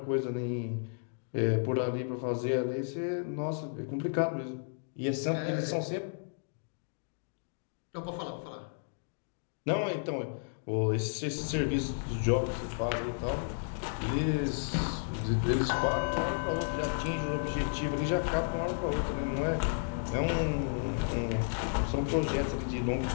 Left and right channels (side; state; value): right; silent; digital silence